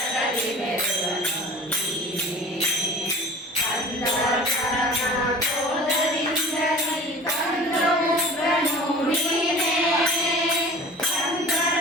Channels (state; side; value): normal; both; correlation 0.42